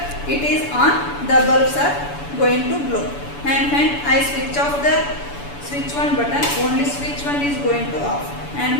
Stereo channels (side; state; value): right; late; 7.0 ms